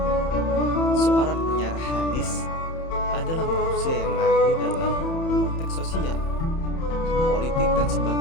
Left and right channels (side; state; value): right; late; 30 ms